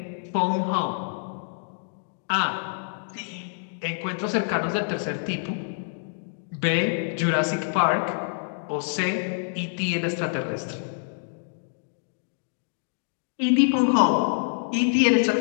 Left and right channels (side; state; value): right; silent; digital silence